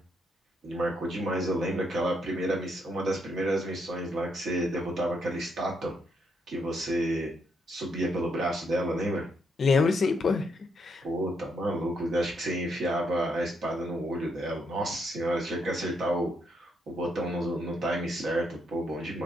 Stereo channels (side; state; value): both; normal; correlation 0.76